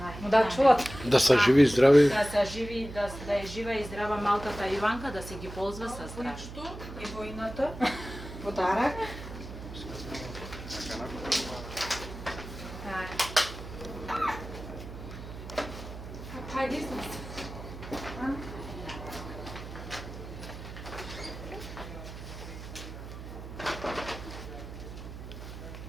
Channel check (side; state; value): right; noise; hum, 11 dB below the sound